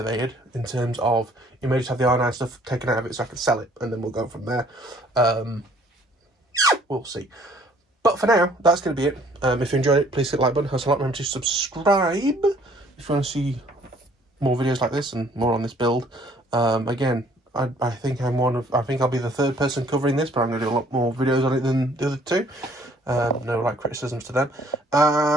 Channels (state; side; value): normal; both; correlation 0.60